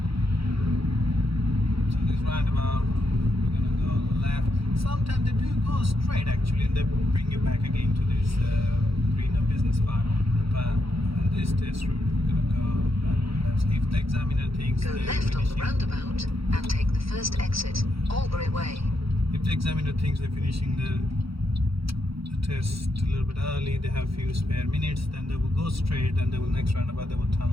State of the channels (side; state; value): left; late; 0.76 ms